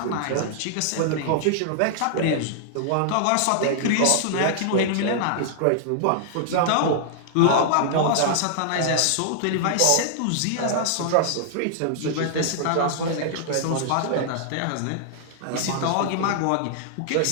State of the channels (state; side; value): different; both; correlation -0.01